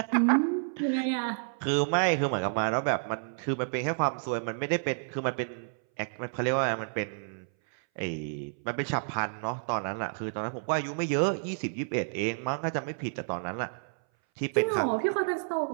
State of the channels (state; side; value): silent; left; 58 dB below the other